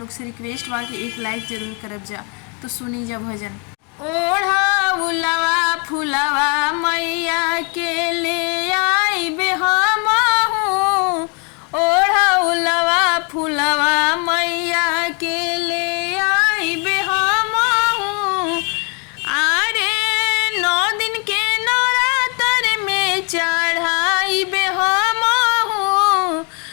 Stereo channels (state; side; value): quieter; right; 35.2 dB